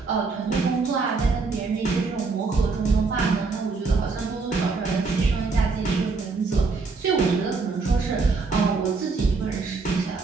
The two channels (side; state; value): left; quieter; 4.3 dB